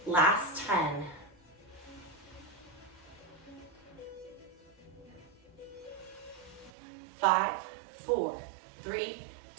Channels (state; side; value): drops out; left; at 6.7 s